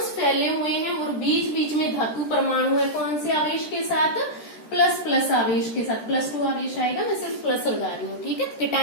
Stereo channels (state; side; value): late; right; 13 ms